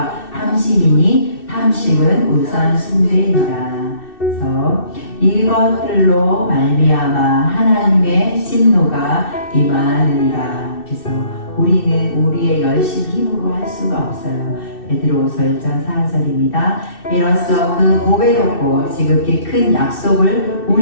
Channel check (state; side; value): late; right; 2.6 ms